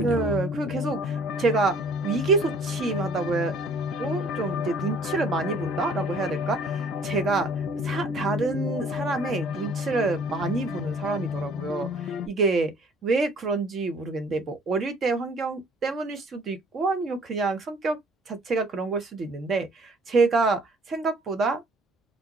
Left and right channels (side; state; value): both; normal; correlation 0.55